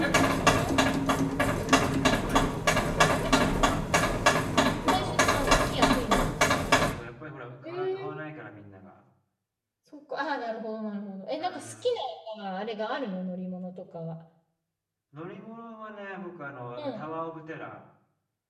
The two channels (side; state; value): both; identical; correlation 1.00